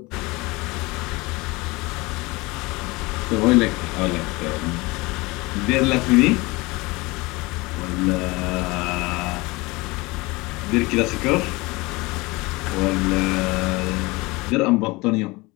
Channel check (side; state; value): right; quieter; 23.5 dB